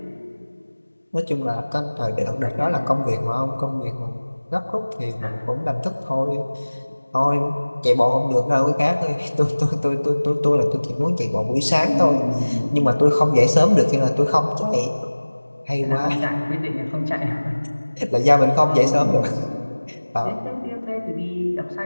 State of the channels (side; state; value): both; inverted; correlation -1.00